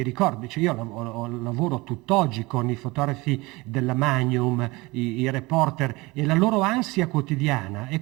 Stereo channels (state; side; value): quieter; left; 22.8 dB